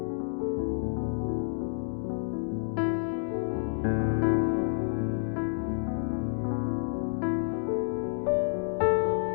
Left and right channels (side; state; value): right; silent; 58 dB below the other